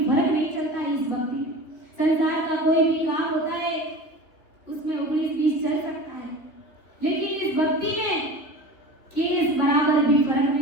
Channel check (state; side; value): late; right; 3.0 ms